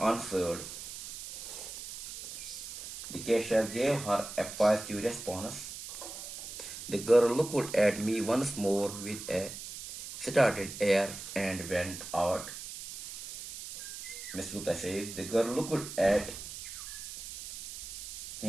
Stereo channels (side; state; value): right; noise; hiss, 10 dB below the sound